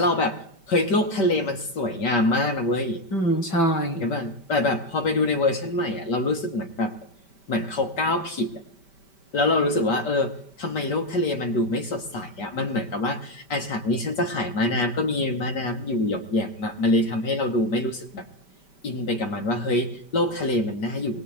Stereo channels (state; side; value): late; right; 5.2 ms